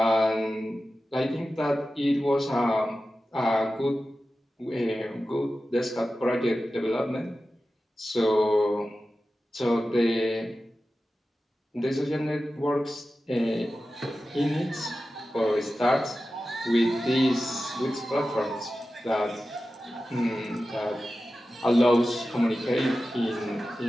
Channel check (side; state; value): both; normal; correlation 0.94